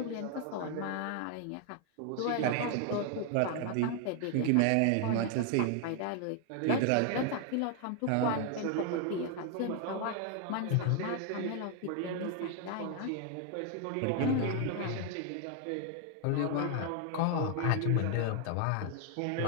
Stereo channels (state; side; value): different; both; correlation 0.00